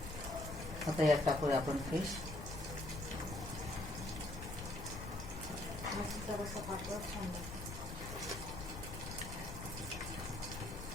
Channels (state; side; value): noise; left; rumble, 9 dB below the sound